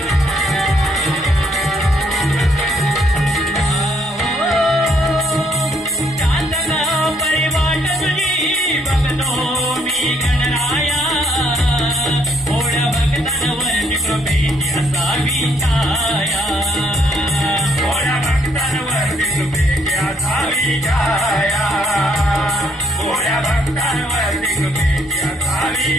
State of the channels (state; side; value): normal; both; correlation 0.68